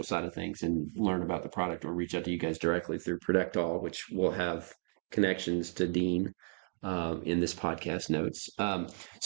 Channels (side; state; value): left; silent; digital silence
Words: side of things and learn about the product, or reach out to you guys directly through Protectall, which will have connections to Dean in this podcast notes.